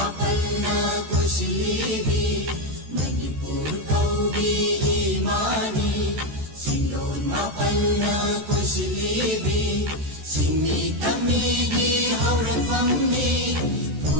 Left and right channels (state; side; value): late; left; 14 ms